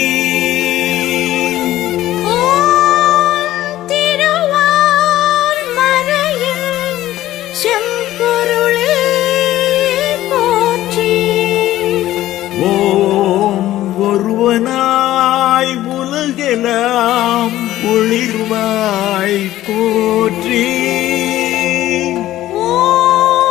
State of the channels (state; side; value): quieter; right; 14.4 dB